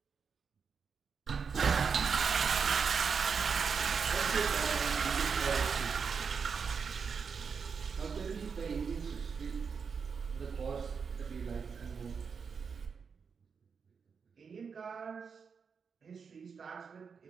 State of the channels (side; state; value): left; quieter; 5.9 dB